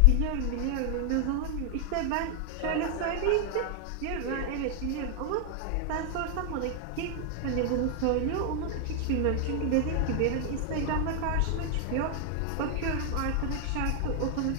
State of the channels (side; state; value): both; different; correlation 0.00